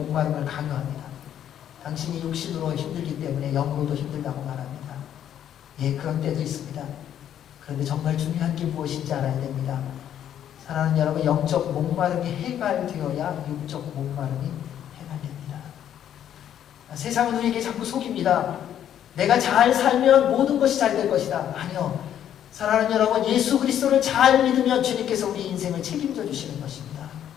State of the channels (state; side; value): quieter; right; 10.2 dB